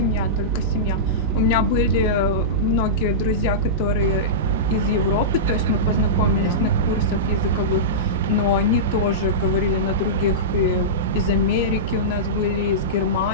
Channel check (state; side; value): normal; both; correlation -0.16